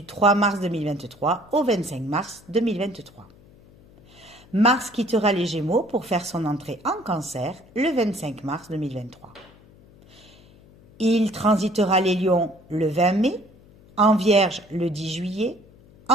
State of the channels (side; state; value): left; noise; hum, 25 dB below the sound